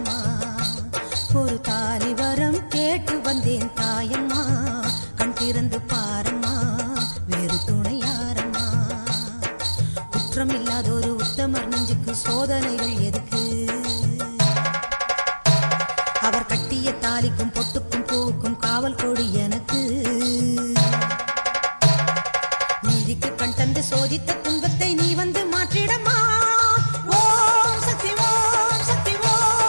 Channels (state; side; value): inverted; both; correlation -1.00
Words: ஒரு தாலி வரம் கேட்டு வந்தேன் தாயம்மா கண் திறந்து பாரம்மா வேறு துணையாரம்மா. குற்றம் இல்லாத ஒரு உத்தமர் நெஞ்சுக்கு சோதனைகள் எதுக்கு? அவர் கட்டிய தாலிக்கும் பொட்டுக்கும் பூவுக்கும் காவல் கொடு எனக்கு. நீதிக்கு கண் தந்து சோதித்த துன்பத்தை நீ வந்து மாற்றிடமா. ஓம் சக்தி ஓம் சக்தி